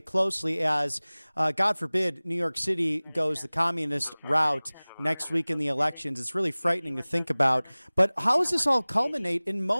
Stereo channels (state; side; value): inverted; both; correlation -1.00